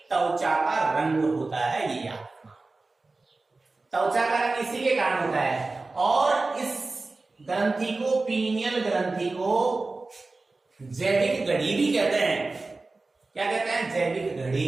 त्वचा का रंग होता है, ये याद रखना। त्वचा का रंग इसी के कारण होता है। और इस ग्रंथि को, पीनियल ग्रंथि को जैविक घड़ी भी कहते हैं। क्या कहते हैं? जैविक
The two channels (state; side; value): quieter; left; 3.5 dB